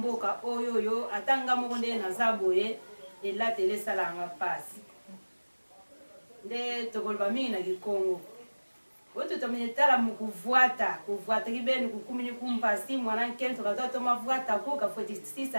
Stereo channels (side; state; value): both; inverted; correlation -1.00